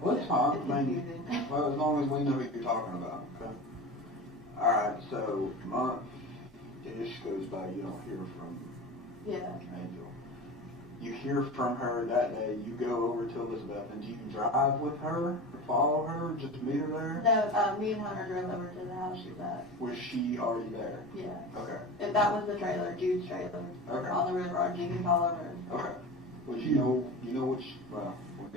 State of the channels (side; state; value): both; normal; correlation 0.30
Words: Well, it's fine. it's I mean, confusing. well, as long as we know what you're talking about. Okay. All right. So month-ish goes by. You don't hear from Yeah. Angel. You hear from her that day. You go over to Elizabeth, and do you drive with her or follow her? Just meet her there? No, me and Hunter drove over to the house she was at. Was she already there? Yeah. Okay. And that was the trailer, Jude's trailer. Okay. On the river, on Jenkins Hollow Road. Okay. Well, you know which. Well, we'll